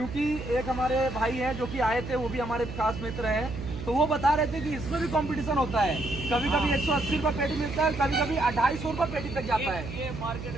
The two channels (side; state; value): right; noise; hum, 9 dB below the sound